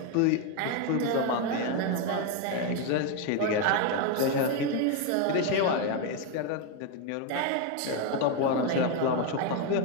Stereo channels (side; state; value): both; different; correlation 0.02